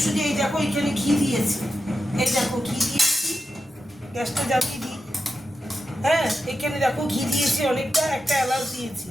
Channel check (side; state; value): both; normal; correlation 0.89